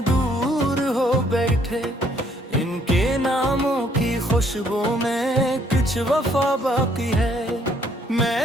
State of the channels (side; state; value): both; normal; correlation 0.66